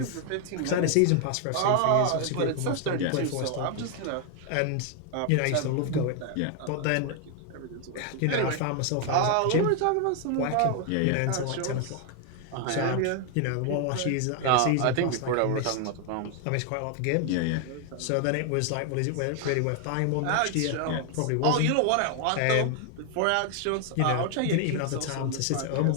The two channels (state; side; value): different; both; correlation 0.00